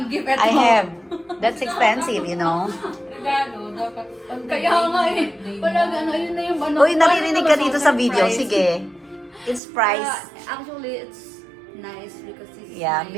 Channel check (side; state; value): left; drops out; at 9.6 s